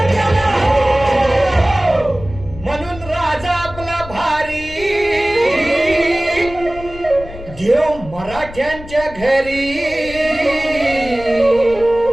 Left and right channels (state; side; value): noise; left; rumble, 15 dB below the sound